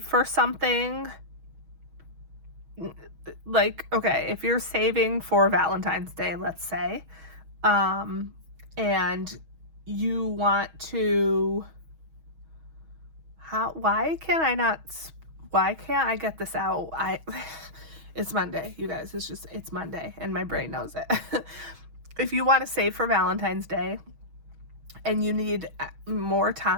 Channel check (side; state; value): left; late; 6.3 ms